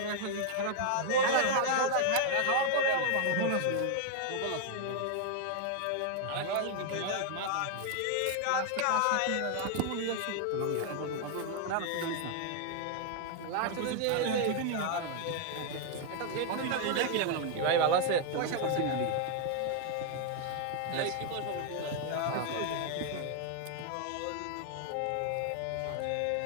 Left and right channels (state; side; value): different; both; correlation 0.00